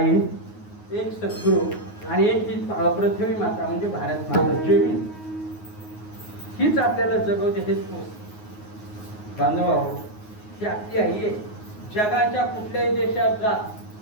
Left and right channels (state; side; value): late; right; 9.5 ms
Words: एक सद्गुरू आणि एक ही पृथ्वी माता म्हणजे भारत माता जमीन. हीच आपल्याला जगवते. हेच बांधवाहो, ही आपली आई आहे. जगाच्या कुठल्याही देशात जा,